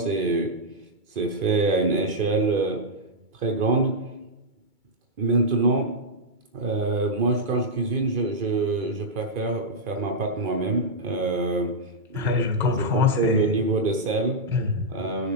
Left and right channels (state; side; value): late; left; 2.3 ms